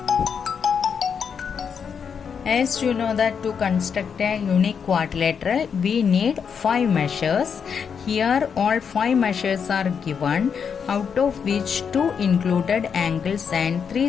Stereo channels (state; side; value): quieter; right; 6.8 dB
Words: As you know that to construct a unique quadrilateral we need 5 measures. Here all 5 measures are given, out of which 2 included angles and 3